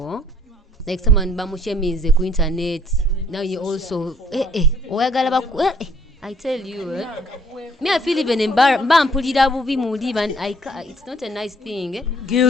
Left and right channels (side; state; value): both; normal; correlation 0.62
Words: Like someone bamushemize ku internet. Now you also I tell you, me I feel even embarrassed. It's not a nice thing.